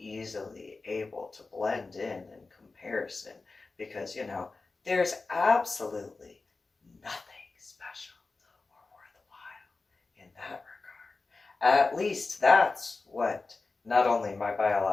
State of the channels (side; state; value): right; quieter; 3.8 dB